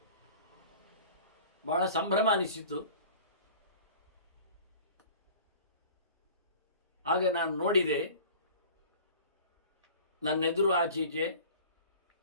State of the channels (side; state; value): both; inverted; correlation -0.43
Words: ಬಹಳ ಸಂಭ್ರಮ ಅನಿಸಿತು. ಆಗ ನಾನು ನೋಡಿದೆ, ನನ್ನೆದುರು ಆಚೀಚೆ,